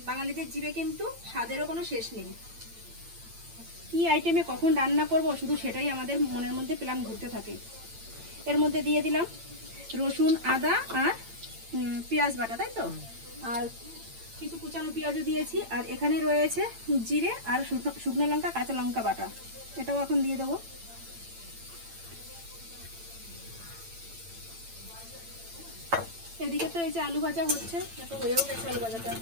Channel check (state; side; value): late; left; 8.9 ms